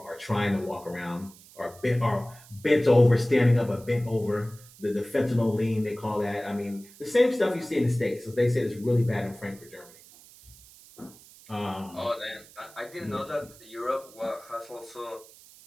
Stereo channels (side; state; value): right; noise; hiss, 22 dB below the sound